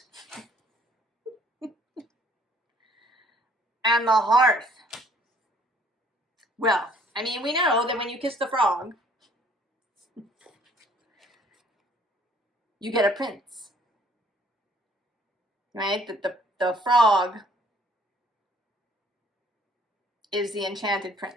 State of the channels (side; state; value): both; normal; correlation 0.60